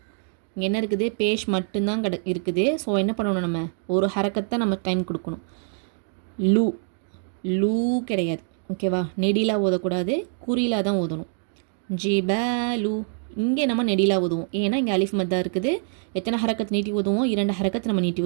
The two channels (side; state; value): left; silent; 62 dB below the other